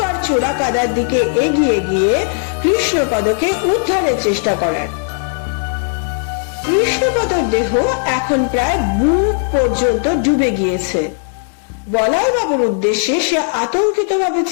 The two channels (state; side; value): silent; right; 67 dB below the other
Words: চোরা কাদার দিকে এগিয়ে গিয়ে কৃষ্ণপদকে উদ্ধারের চেষ্টা করার। কৃষ্ণপদর দেহ এখন প্রায় বুক পর্যন্ত ডুবে গিয়েছে। বলাইবাবুর উদ্দেশ্যে সে আতঙ্কিত ভাবে